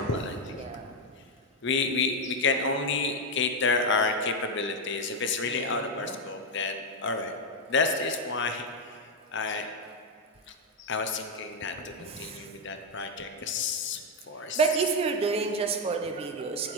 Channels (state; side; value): normal; both; correlation 0.03